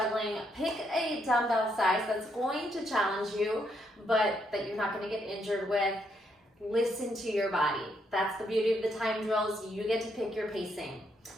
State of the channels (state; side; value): normal; both; correlation 0.76